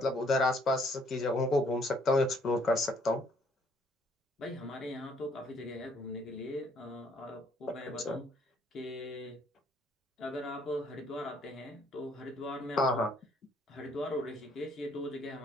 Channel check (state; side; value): normal; both; correlation 0.65